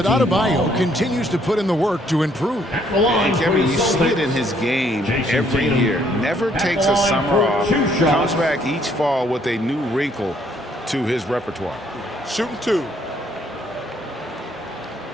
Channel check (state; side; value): normal; both; correlation 0.66